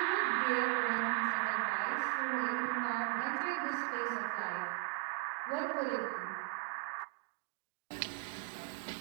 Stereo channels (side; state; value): left; quieter; 31.3 dB